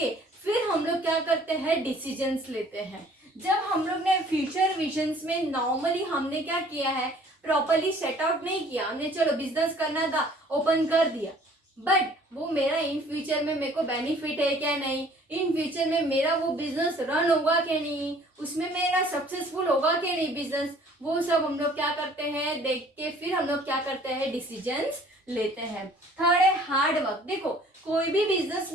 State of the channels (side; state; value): both; normal; correlation 0.54